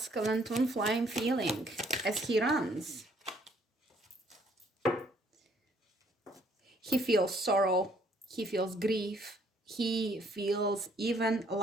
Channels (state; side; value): normal; both; correlation 0.64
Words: twin flame feeling as he runs. He feels sorrow, he feels grief, he feels even